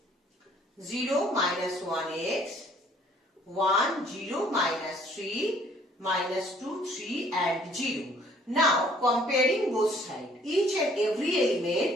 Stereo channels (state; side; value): normal; both; correlation 0.59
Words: 0 minus 1x, 1, 0 minus 3, minus 2, 3 and 0. Now comparing both sides, each and every